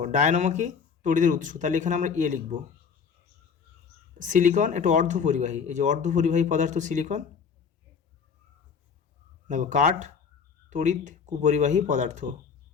ডায়নামো কি? তড়িতের উৎস, তাহলে এখানে আমরা এ লিখব। সিলিকন একটু অর্ধপরিবাহী, এই যে অর্ধপরিবাহী পদার্থ সিলিকন। দেখো কাঠ তড়িৎ কুপরিবাহী পদার্থ,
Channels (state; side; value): quieter; right; 6.3 dB